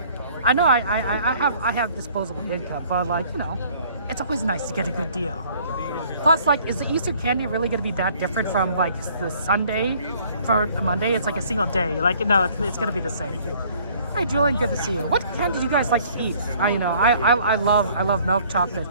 I know I have disposable income, but like, you know, it's always nice to get a good deal. Plus, like, is the Easter candy really going to be that different from like the Sunday for Monday? It's like a single day. Like, no, it's going to be the same. Hey, Julian, good to see you. What candy do you guys like to eat? I love milk chocolate.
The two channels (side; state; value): both; inverted; correlation -0.57